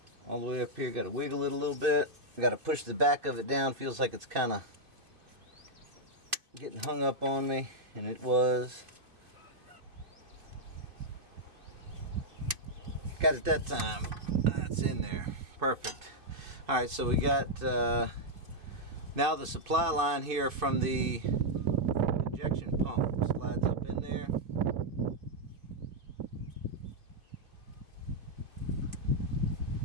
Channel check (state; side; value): late; left; 2.5 ms